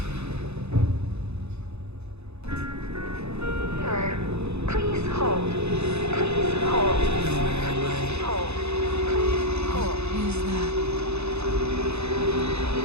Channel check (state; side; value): late; left; 0.80 ms